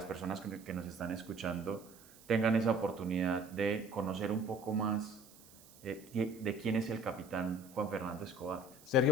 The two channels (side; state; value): right; noise; hiss, 23 dB below the sound